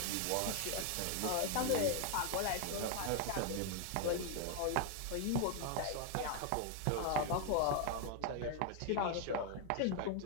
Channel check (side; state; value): both; different; correlation 0.00